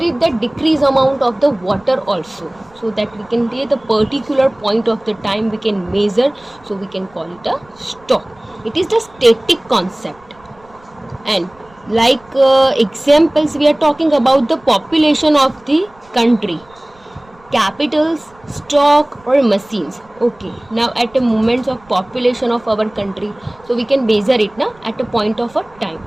it the decrease amount of the water also, so that we can take the particular point of the time we can measure, so we can call it a stock. It is the static concept. And like examples, we are talking about the population of the country, capitals, stock or machines. Okay, now at a moment of population of our country, so we can measure it now at a point of a time.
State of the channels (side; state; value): right; noise; rumble, 29 dB below the sound